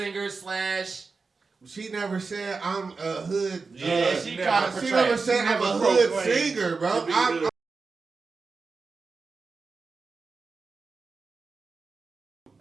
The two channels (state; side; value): quieter; left; 4.5 dB